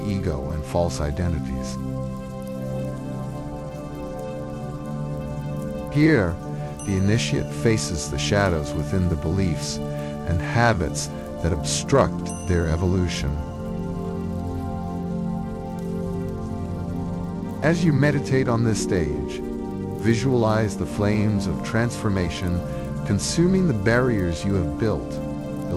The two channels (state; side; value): identical; both; correlation 1.00